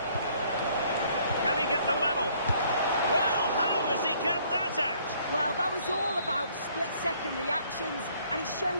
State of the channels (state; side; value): inverted; both; correlation -0.62